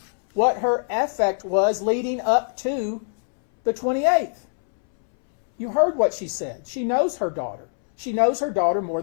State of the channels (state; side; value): silent; right; 63 dB below the other